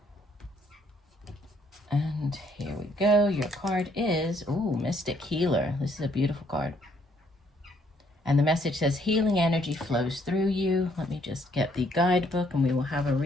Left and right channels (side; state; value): both; normal; correlation 0.67